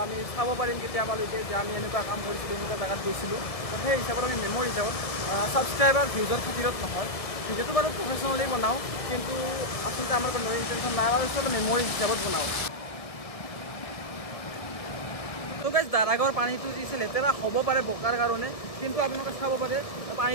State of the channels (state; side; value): late; right; 1.7 ms